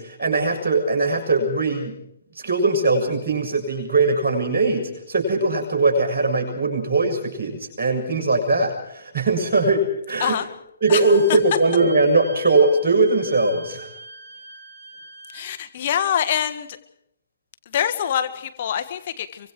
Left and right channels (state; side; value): inverted; both; correlation -0.59